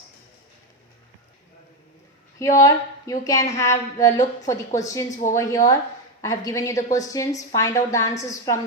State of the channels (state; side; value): normal; both; correlation 0.10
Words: Here you can have a look for the questions over here. I have given you the questions. Find out the answers from